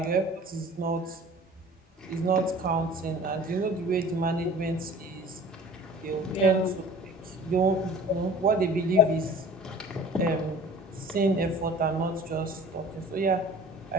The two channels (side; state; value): both; normal; correlation 0.45